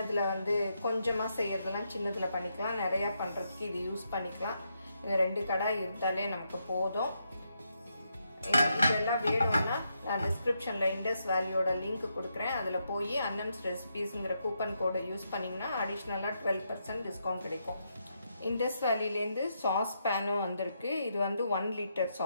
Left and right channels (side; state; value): both; inverted; correlation -0.81